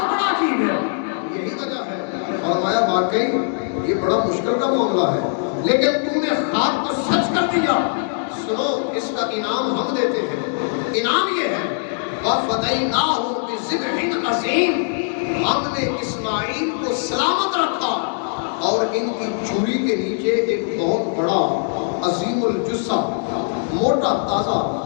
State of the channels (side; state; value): right; silent; digital silence